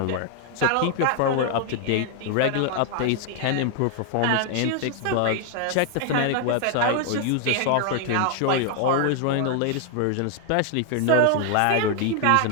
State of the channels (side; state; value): both; different; correlation 0.00